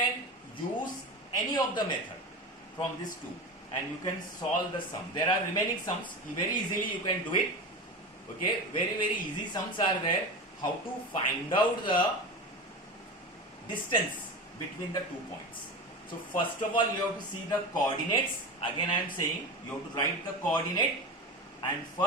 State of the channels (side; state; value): both; normal; correlation 0.26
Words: use any of the method from these two and you can solve the sum. There are remaining sums. Very easily you can do it. Okay, very easy sums are there. How to find out the distance between the 2 points. So first of all you have to see the coordinates. Again I am saying you have to write the coordinate, and